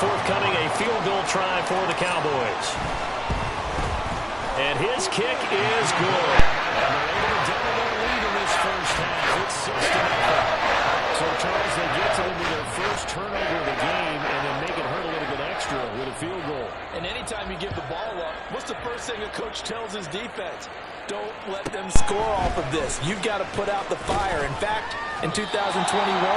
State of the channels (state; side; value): identical; both; correlation 1.00